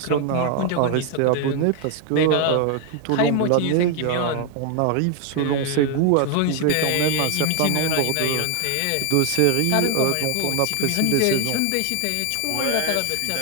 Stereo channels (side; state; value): both; different; correlation 0.00